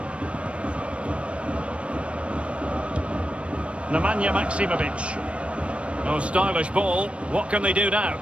Nemanja Maksimovic. Oh, stylish ball. What can they do now?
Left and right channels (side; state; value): left; late; 0.061 ms